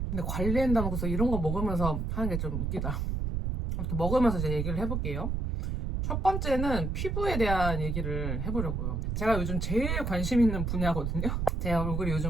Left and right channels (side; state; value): right; noise; rumble, 1 dB below the sound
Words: 근데 관리한다면서 이런 거 먹으면서 하는 게 좀 웃기다. 아무튼 먹으면서 이제 얘기를 해볼게요. 첫 번째는 피부에 대한 얘기를 해보려고요. 제가 요즘 제일 관심 있는 분야거든요. 제 얼굴이